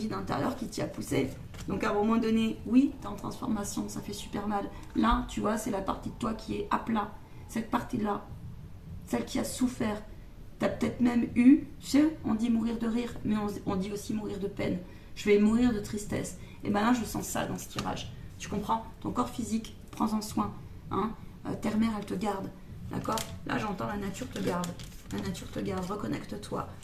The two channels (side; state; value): both; identical; correlation 1.00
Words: intérieur qui t'y a poussé. Donc à un moment donné, oui, t'es en transformation, ça fait super mal. Là, tu vois, c'est la partie de toi qui est à plat. Cette partie-là, celle qui a souffert. T'as peut-être même eu, tu sais, on dit mourir de rire, mais on dit aussi mourir de peine. Je vais mourir de tristesse. Et là, je sens ça dans ce tirage. Tu comprends? Ton corps physique, prends-en soin. Hein. Terre-mère, elle te garde. D'accord? Là, j'entends la nature te garde. La nature te garde, reconnecte-toi.